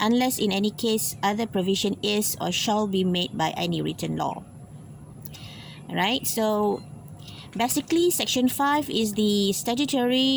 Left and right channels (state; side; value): identical; both; correlation 1.00